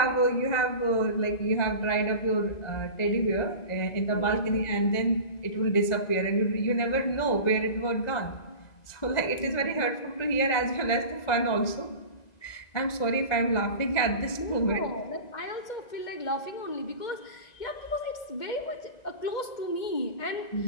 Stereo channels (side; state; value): right; late; 1.9 ms